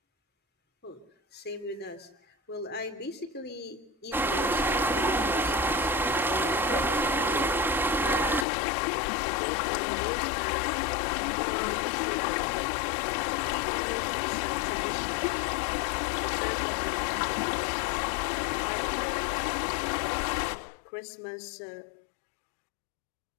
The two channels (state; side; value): drops out; right; at 8.5 s